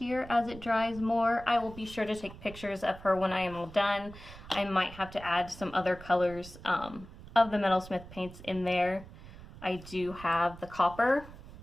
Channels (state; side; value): noise; right; rumble, 16 dB below the sound